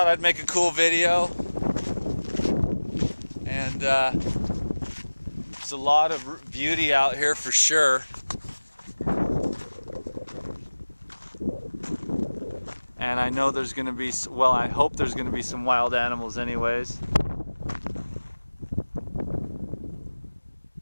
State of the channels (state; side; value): inverted; both; correlation -1.00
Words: I'd make a cool video, and there's a lot of beauty out here for sure. And I know there's going to be, well, I hope there's going to be some wild animals anyways.